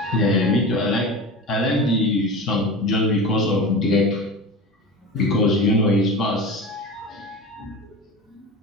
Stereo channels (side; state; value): both; normal; correlation 0.30